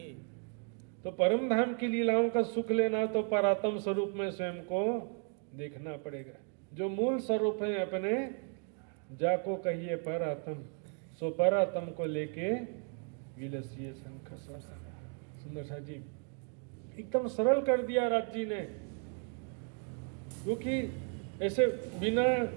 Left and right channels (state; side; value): quieter; left; 39.9 dB